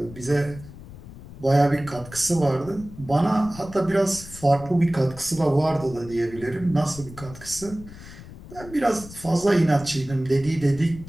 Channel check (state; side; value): noise; left; rumble, 16 dB below the sound